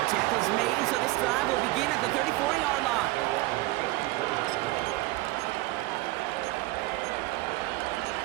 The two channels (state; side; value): quieter; left; 19.4 dB